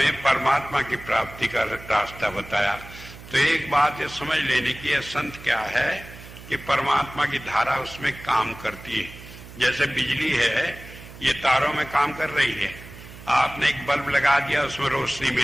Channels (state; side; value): noise; right; hum, 16 dB below the sound